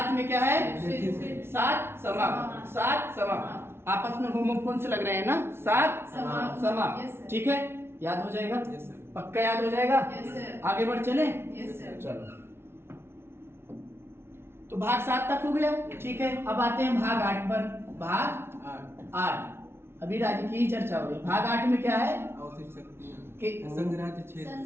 में क्या है? 7 समाप्त, 7 समाप्त। आपस में होमोफोन से लग रहे हैं ना, 7 समाप्त, ठीक है। याद हो जाएगा? पक्का याद हो जाएगा? आगे बढ़ चले? चलो, तो भाग 7 तक हो गया, ठीक है। अब आते हैं भाग 8 पर। भाग 8 अभी राज्य की ही चर्चा हो रही। भाग 8 में क्या है?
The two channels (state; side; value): late; left; 0.12 ms